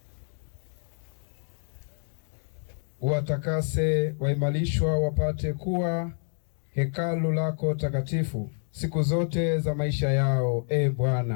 Watakase waimarishwa wapate kuwa hekalu lako takatifu siku zote za maisha yao, e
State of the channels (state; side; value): silent; right; 59 dB below the other